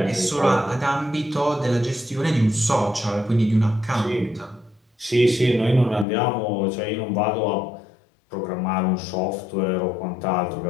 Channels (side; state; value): right; drops out; at 6.1 s